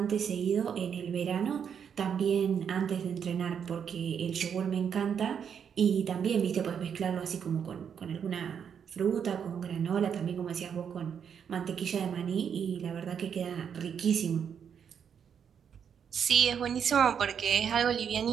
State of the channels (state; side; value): quieter; left; 7.7 dB